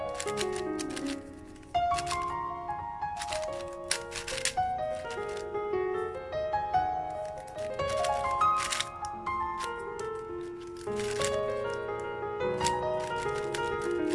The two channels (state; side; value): identical; both; correlation 1.00